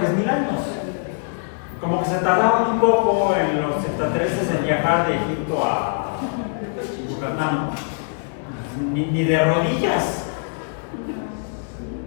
años. Como que se tardaron un poco en los extraterrestres en viajar de Egipto a Yucatán, ni de rodillas.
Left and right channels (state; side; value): silent; right; digital silence